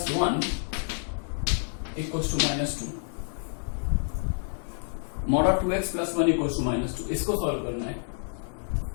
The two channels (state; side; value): silent; right; 55 dB below the other